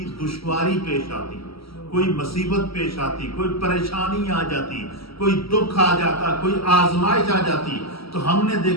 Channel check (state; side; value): late; right; 0.75 ms